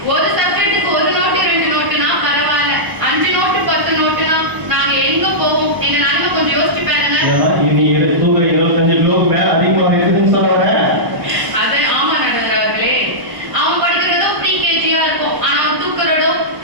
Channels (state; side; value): late; left; 1.1 ms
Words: ஒரு சப்ஜெக்ட்டுக்கு ஒரு நோட்டு 2 நோட்டுனா பரவாயில்ல, 5 நோட்டு 10 நோட்டுனா நாங்க எங்க போவோம்? இந்த நாளைக்கு கொஞ்சம் யோசிச்சு பாருங்க. நீ தூக்க 25 கிலோக்கு மேல அதிகமாக இருக்குன்னு சொல்ல. அது ஆமா நடுவர் அவர்களே, அவன் படிக்கிறதோ ப்ரீ-கேஜியா இருக்கும், ஆனா அவன் தூக்குறதோ